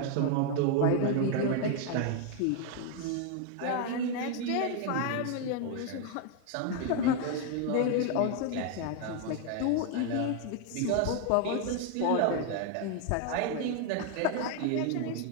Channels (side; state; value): both; different; correlation 0.01